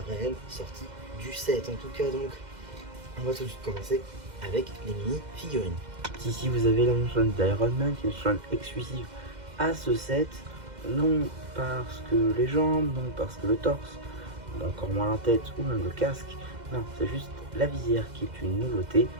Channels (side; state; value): left; late; 2.0 ms